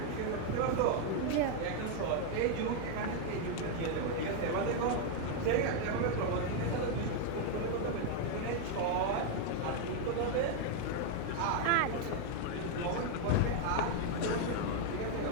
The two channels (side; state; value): both; different; correlation 0.00